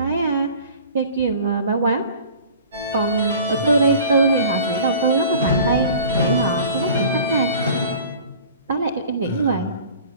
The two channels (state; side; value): inverted; both; correlation -0.45